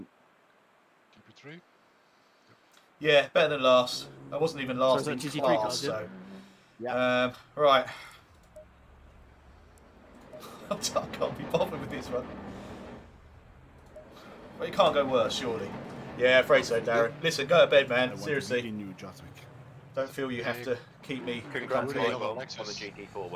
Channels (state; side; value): identical; both; correlation 1.00